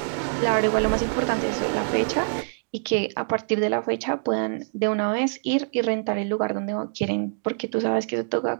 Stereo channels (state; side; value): silent; left; digital silence